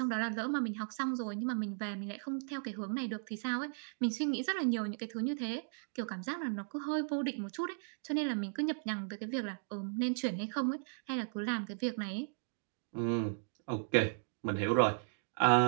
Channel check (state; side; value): silent; left; digital silence